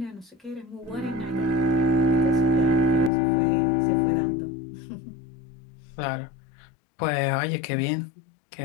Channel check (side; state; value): right; drops out; at 3.1 s